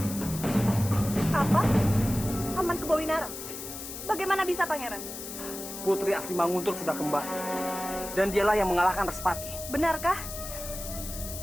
Apa? Paman Kebawinara? Bagaimana bisa, Pangeran? Putri asli Manguntur sudah kembali. Dan dialah yang mengalahkan Respati. Benarkah?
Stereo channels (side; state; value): left; noise; hiss, 9 dB below the sound